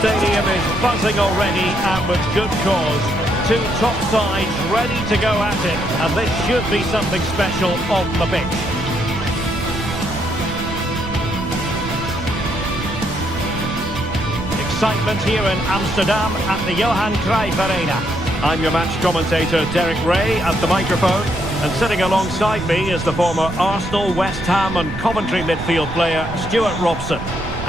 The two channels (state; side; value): noise; right; rumble, 9 dB below the sound